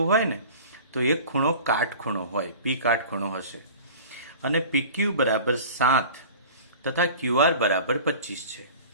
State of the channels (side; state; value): both; inverted; correlation -0.40